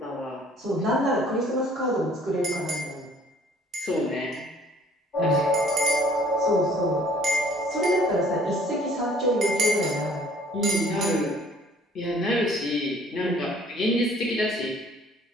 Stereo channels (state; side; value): normal; both; correlation 0.56